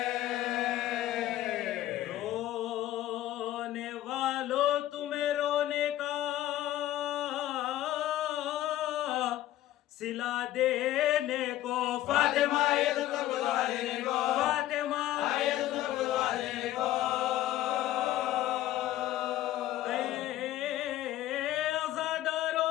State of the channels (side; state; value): right; quieter; 14.2 dB